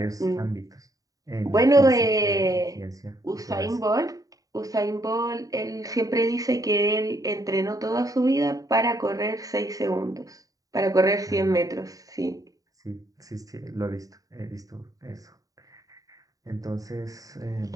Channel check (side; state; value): left; late; 0.17 ms